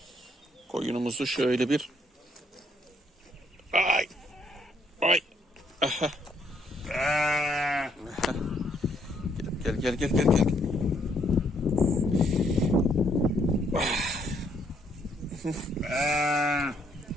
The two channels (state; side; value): normal; both; correlation 0.70